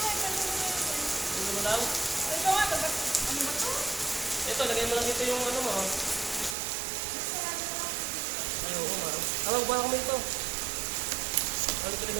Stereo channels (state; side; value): drops out; left; at 6.6 s